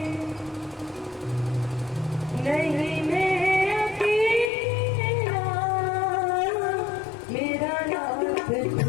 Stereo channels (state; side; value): drops out; right; at 4.5 s